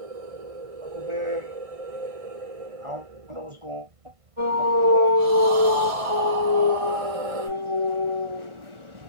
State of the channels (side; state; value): left; late; 1.5 ms